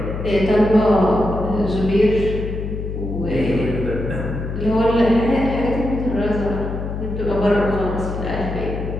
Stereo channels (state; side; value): noise; left; hum, 5 dB below the sound